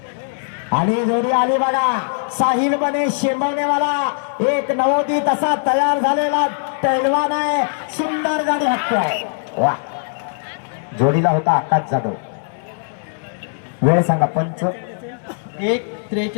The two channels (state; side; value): silent; right; 64 dB below the other